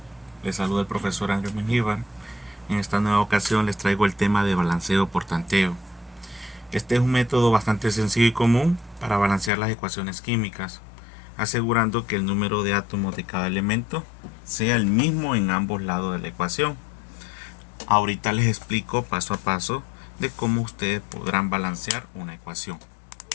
Les saluda el profesor Ángel Mengíbar. En esta nueva ocasión les traigo el tema de balanceo por tanteo. Este es un método bastante sencillo y común para balancear las ecuaciones químicas, asegurando que el número de átomos de cada elemento sea el mismo en ambos lados de la ecuación. Ahorita les explico paso a paso de cómo ustedes podrán balancear una ecuación.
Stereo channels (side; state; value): right; drops out; at 9.5 s